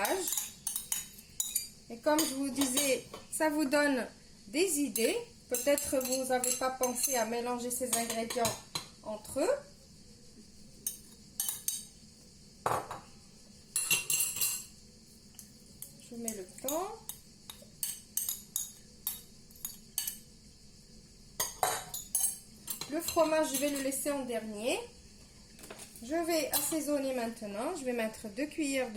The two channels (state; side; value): identical; both; correlation 1.00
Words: Et comme je vous disais, ça vous donne des idées. Peut-être vous n'avez pas pensé à mélanger ces ingrédients entre eux. Je mets le thon. Le fromage, je vais le laisser en dernier. Je vais assaisonner maintenant. Je vais mettre 2 cuillères